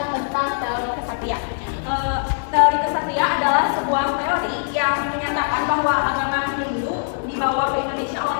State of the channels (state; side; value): silent; right; 62 dB below the other